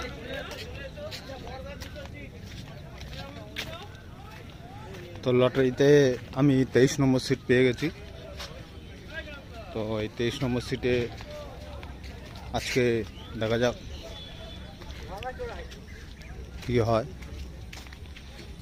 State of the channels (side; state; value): both; identical; correlation 1.00